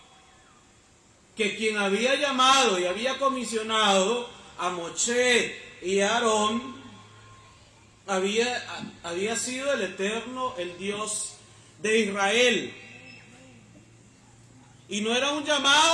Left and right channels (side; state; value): both; identical; correlation 1.00